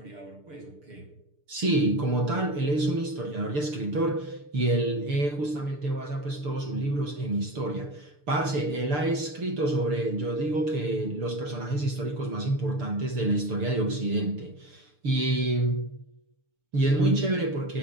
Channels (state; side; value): late; left; 6.8 ms